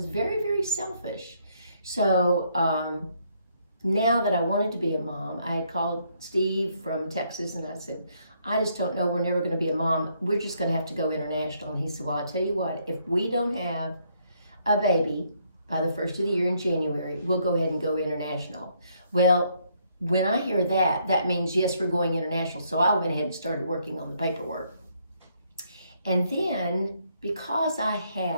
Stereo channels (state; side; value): inverted; both; correlation -0.71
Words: very, very selfish. So now that I wanted to be a mom, I had called Steve from Texas and I said, I just don't know, we're never going to be a mom. We're just going to have to go international. And he said, well, I tell you what, if we don't have a baby by the first of the year in January, we'll go ahead and go international. Well, when I hear that, that means yes, we're going international. So I went ahead and started working on the paperwork. And then, because I